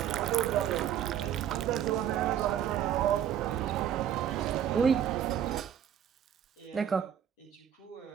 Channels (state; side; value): quieter; left; 9.8 dB